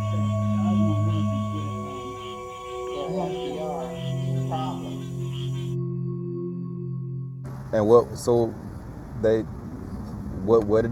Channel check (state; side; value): identical; both; correlation 1.00